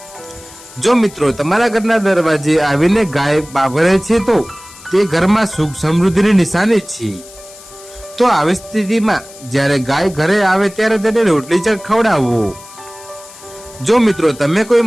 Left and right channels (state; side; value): noise; left; hiss, 20 dB below the sound